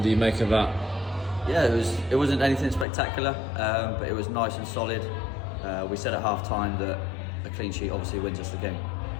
do you make of that? Yeah, it wasn't anything spectacular, but it was nice and solid. We said at half time that a clean sheet obviously wins us the game,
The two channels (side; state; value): right; drops out; at 2.9 s